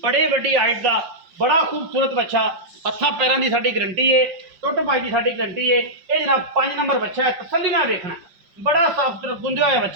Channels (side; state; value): left; late; 5.4 ms